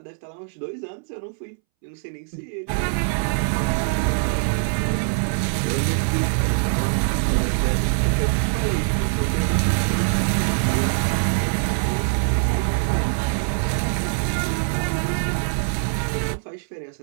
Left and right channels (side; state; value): left; silent; 63 dB below the other